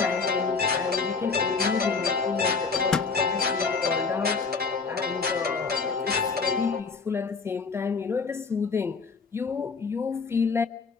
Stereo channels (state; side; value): quieter; right; 4.8 dB